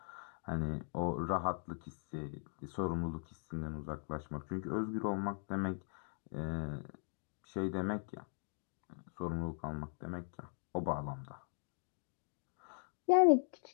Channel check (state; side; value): silent; right; digital silence